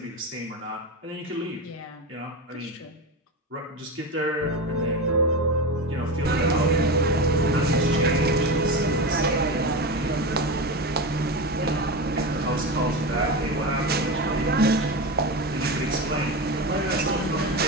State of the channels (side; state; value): both; normal; correlation 0.21